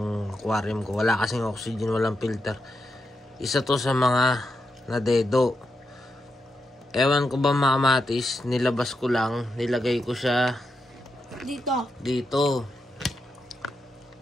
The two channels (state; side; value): normal; both; correlation 0.85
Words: aquarium ko. Wala kasing oxygen, walang filter. Isa to sa mga nadedo. Ewan ko ba mga kamatis, nilabas ko lang, nilagay ko siya dito.